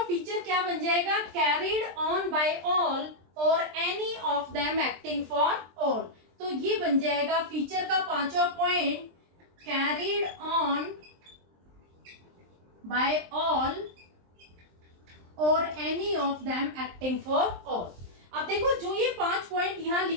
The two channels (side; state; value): left; late; 23 ms